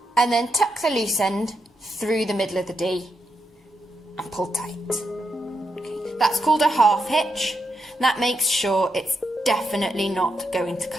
and then tuck the loose end through the middle of the D and pull tight. Okay. That's called a half hitch. That makes sure it's definitely not going to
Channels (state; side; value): normal; both; correlation 0.83